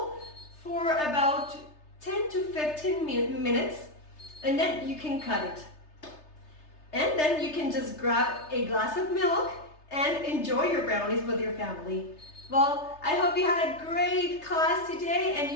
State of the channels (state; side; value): late; right; 3.3 ms